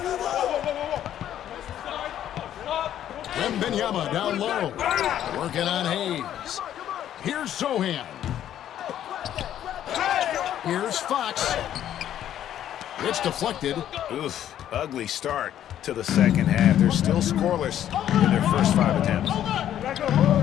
Wembanyama down low. Working on Hayes. Here's Sohan. Here's Fox. It's deflected. Oof, ugly start to the second half. They're still scoreless in their first 5 attempts.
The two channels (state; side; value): quieter; right; 11.1 dB